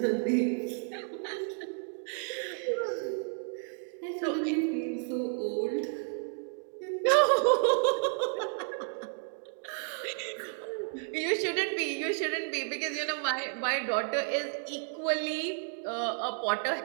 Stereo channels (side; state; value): left; silent; 55 dB below the other